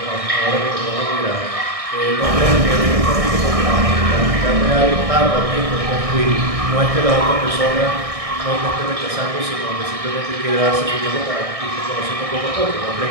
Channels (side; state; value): left; late; 1.6 ms